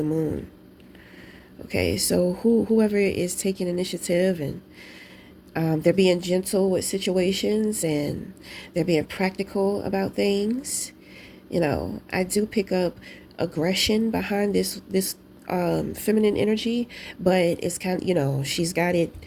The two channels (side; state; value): both; identical; correlation 1.00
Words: moon. Okay, so whoever is taking initiative and they're being gentle with situations and they're being practical about things. I do pick up aggression behind this feminine energy, but it's kind of, she's got it.